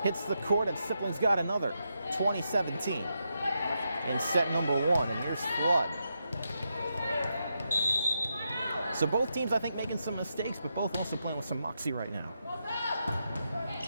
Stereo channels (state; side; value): inverted; both; correlation -0.84